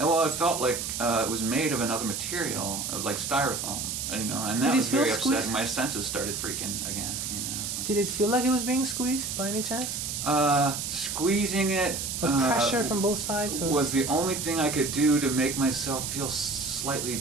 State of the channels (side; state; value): right; noise; hiss, 4 dB below the sound